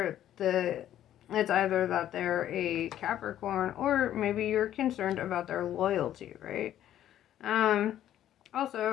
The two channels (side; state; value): right; quieter; 11.7 dB